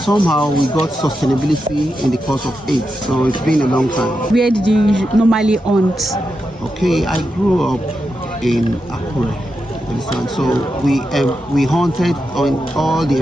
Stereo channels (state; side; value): normal; both; correlation 0.87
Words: we got sustainability in the course of it. So it's been a long time. Where did you normally hunt? Okay, I grew up in Akure. So we hunted on all the